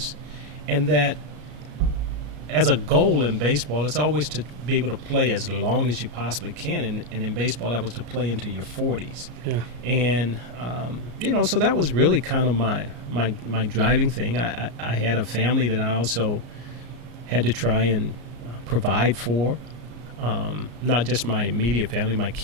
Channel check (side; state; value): left; late; 34 ms